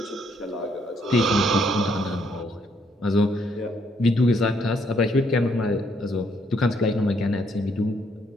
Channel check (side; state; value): both; normal; correlation 0.71